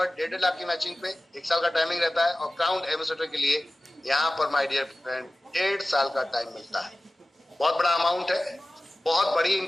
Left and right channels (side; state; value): both; normal; correlation 0.97